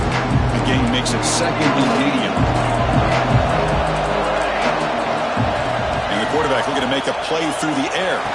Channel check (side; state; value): both; identical; correlation 1.00